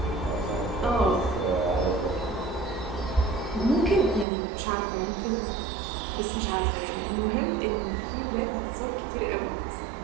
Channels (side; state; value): left; drops out; at 4.2 s